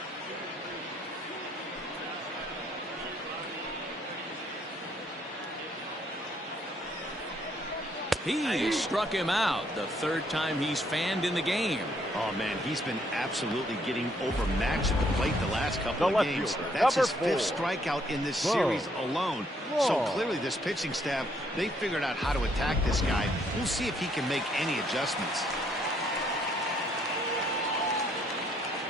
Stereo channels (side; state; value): both; normal; correlation 0.69